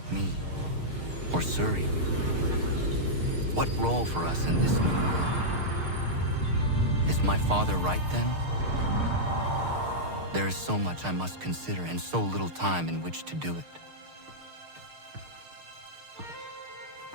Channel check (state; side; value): late; left; 6.5 ms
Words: me, or Surrey? What role for us in this new world? Is my father right then? There is so much I must consider and so little time in which to do it.